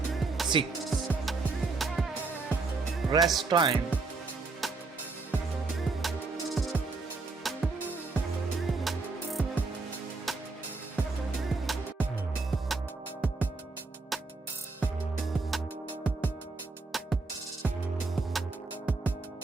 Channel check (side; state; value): left; quieter; 3.9 dB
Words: 6. Rest time.